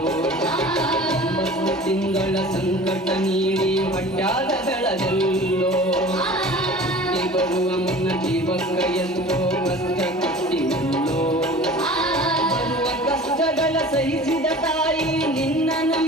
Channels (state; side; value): normal; both; correlation 0.42